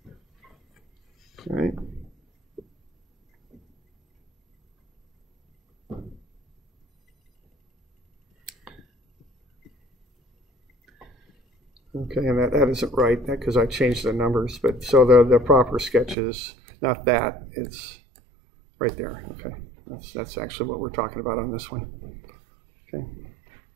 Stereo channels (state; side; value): drops out; left; at 16.2 s